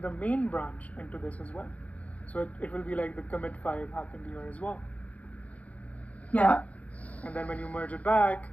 main branch into this as well. So it will be like the commit 5 happened here as well. Yeah. And then when you merge it back,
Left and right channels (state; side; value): late; right; 0.067 ms